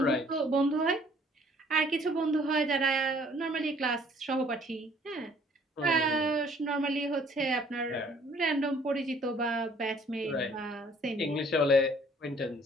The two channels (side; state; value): both; normal; correlation 0.58